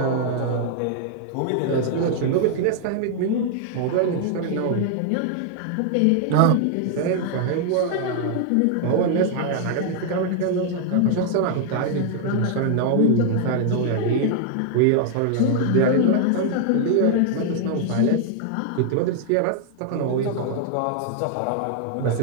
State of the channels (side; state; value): both; different; correlation 0.00